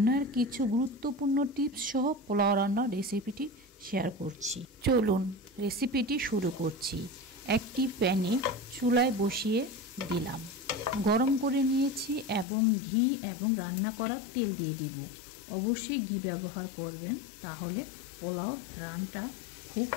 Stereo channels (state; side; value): drops out; right; at 12.5 s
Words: কিছু গুরুত্বপূর্ণ টিপস সহ পোলাও রান্নার রেসিপিটি শেয়ার করছি। চলুন রেসিপিটি শুরু করছি। একটি প্যানে চুলায় বসিয়ে দিলাম, গরম করে নিয়েছি এবং ঘি এবং রান্না করার তেল দিয়ে দিব। অবশ্যই ঘি ব্যবহার করবেন, তাহলে পোলাওর ঘ্রাণটা খুব